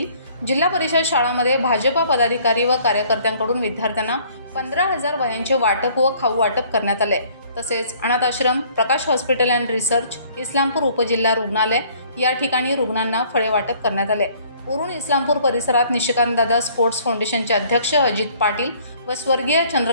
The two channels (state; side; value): inverted; both; correlation -0.58